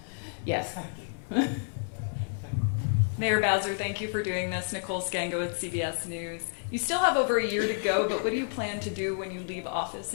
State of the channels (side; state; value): right; silent; digital silence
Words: Yes. Mayor Bowser, thank you for doing this. Nicole Scango with CBS News. You still have over a year to go, but what do you plan to do when you leave office